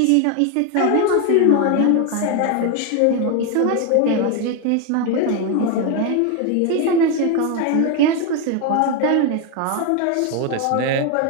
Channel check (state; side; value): different; both; correlation 0.02